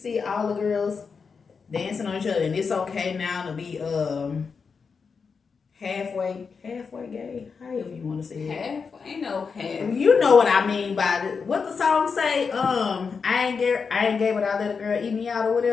all the girls dancing on each other, and it's okay now to be halfway gay, however you want to say it. Half, ain't no half. You know what I mean by it. What the song say? I ain't gay, but I let a girl eat me out or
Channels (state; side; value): quieter; right; 5.4 dB